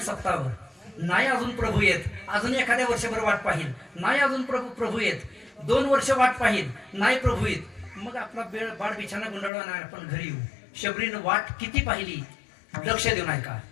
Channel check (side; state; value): right; drops out; at 9.5 s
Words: सप्ताहभर, नाही अजून प्रभू येत, अजून एखाद्या वर्षभर वाट पाहिल, नाही अजून प्रभू येत, 2 वर्ष वाट पाहिल, नाही प्रभू येत, मग आपला बाळ बिछाना गुंडाळवा नाही, आपण घरी येऊ. शबरीनं वाट किती पाहिली, लक्ष देऊ नाही का.